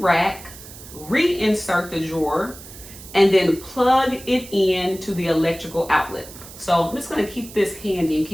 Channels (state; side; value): noise; right; hiss, 17 dB below the sound